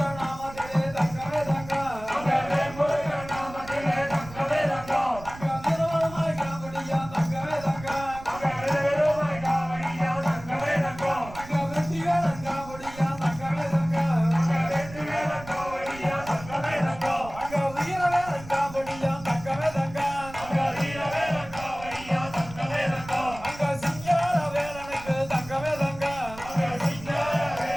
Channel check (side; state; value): right; noise; rumble, 15 dB below the sound